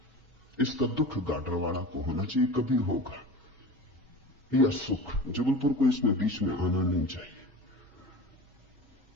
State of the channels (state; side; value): normal; both; correlation 0.34